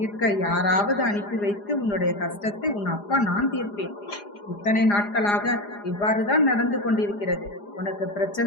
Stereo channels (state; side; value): late; right; 4.9 ms